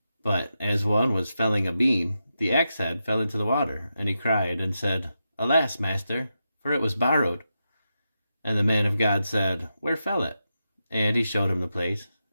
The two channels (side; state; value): both; inverted; correlation -0.87